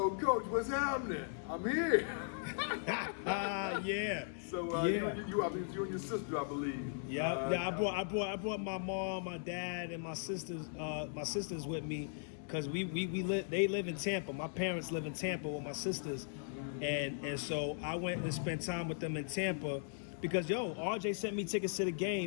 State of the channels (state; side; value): silent; right; digital silence